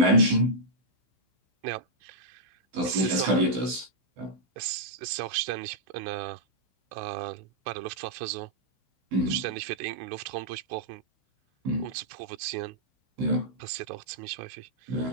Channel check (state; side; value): late; left; 16 ms